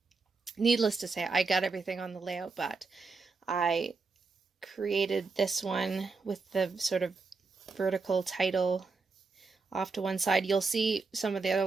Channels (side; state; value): left; quieter; 4.3 dB